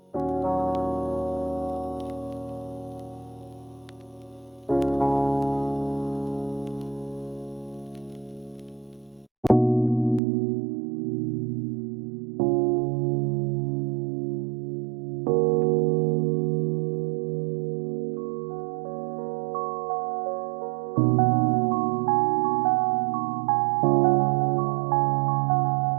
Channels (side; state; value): left; drops out; at 10.2 s